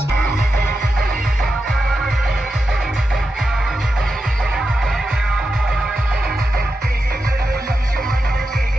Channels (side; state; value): both; normal; correlation 0.89